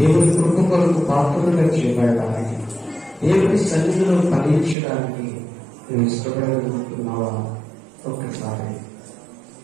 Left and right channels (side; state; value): left; drops out; at 4.8 s